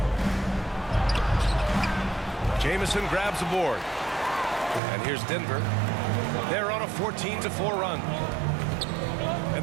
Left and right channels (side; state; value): left; drops out; at 4.8 s